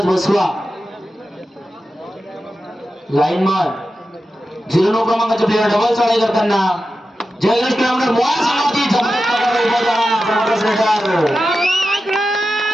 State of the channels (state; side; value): normal; both; correlation 0.92